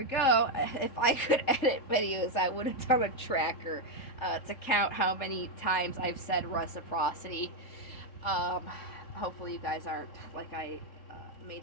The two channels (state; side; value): late; right; 3.7 ms